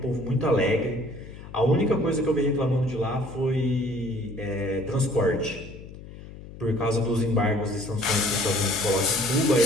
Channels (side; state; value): left; noise; hum, 15 dB below the sound